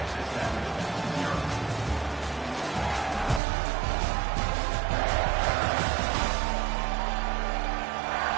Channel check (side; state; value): left; drops out; at 3.4 s